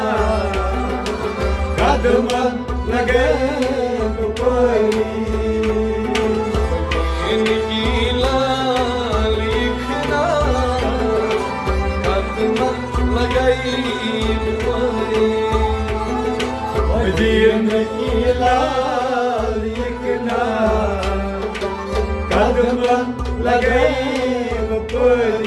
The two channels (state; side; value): identical; both; correlation 1.00